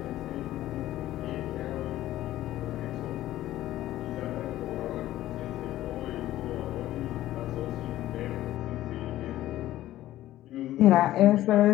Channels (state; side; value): quieter; right; 14.4 dB